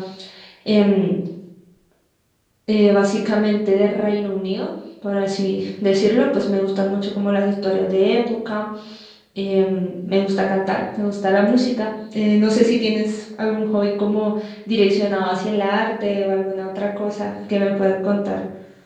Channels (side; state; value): both; identical; correlation 1.00